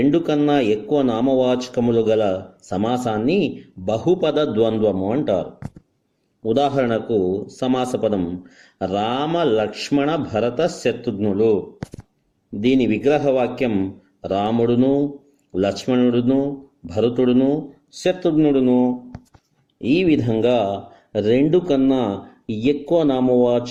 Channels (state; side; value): identical; both; correlation 1.00